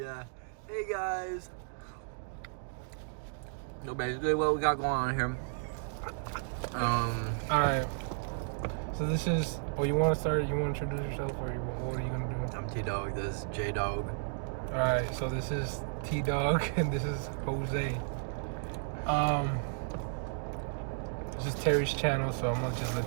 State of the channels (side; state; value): left; silent; digital silence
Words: Hey guys. So basically what we got going on here. Alright. So this is, you want to start? You want to introduce yourself, or what are you going to do? I'm T-Dog, this is J-Dog. Alright, so this is T-Dog, and this is Jose. This is Terry's channel, so I'm going to just let